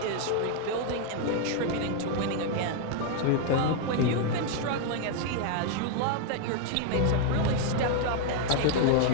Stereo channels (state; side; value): different; both; correlation 0.00